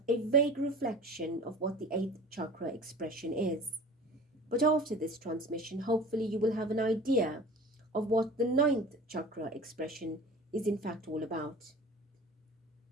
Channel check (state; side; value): normal; both; correlation 0.40